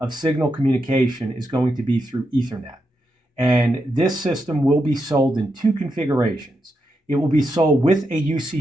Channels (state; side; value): normal; both; correlation 0.85